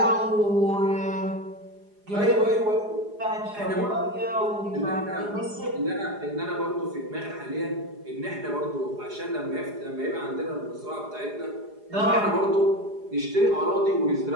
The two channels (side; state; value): left; late; 4.9 ms